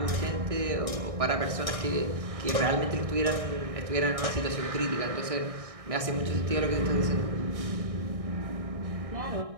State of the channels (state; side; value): late; left; 1.6 ms